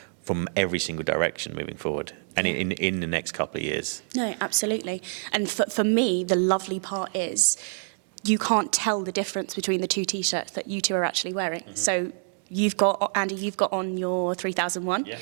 from every single direction moving forward, and in the next couple of years. No, absolutely. And for me, the lovely part is you can't tell the difference between the two T-shirts that you two are actually wearing. Mm-hmm. So you've got, Andy, you've got on your 3001,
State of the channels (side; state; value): left; silent; 60 dB below the other